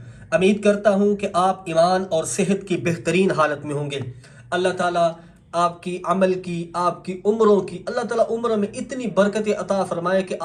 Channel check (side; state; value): both; identical; correlation 1.00